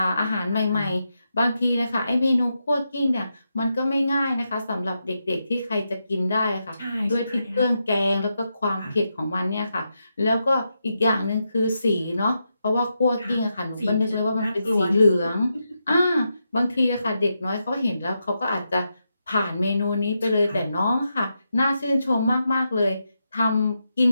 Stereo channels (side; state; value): both; inverted; correlation -0.85